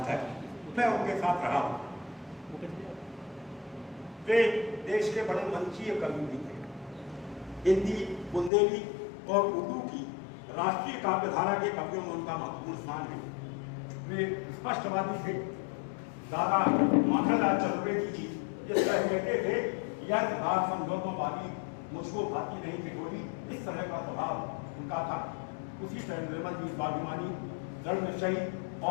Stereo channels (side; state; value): right; drops out; at 8.5 s